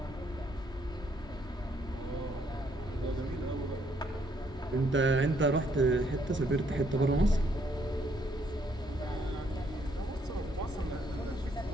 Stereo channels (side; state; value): both; normal; correlation 0.69